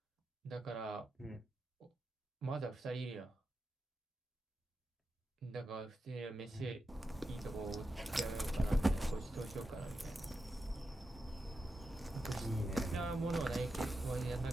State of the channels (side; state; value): both; normal; correlation 0.89